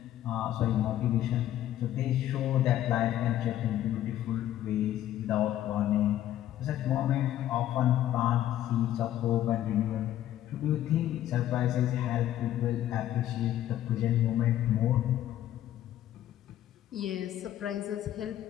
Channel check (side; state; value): right; quieter; 12.5 dB